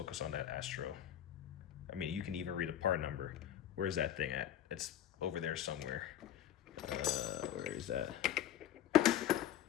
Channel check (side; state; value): right; quieter; 11.1 dB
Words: on that Astro. I mean, you can even read a part number. Where's that thing at? It's over there somewhere. Where is that?